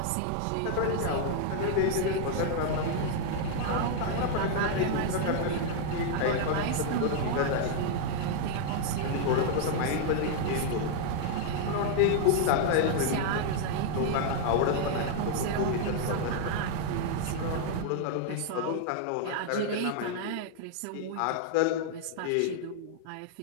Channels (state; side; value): different; both; correlation -0.01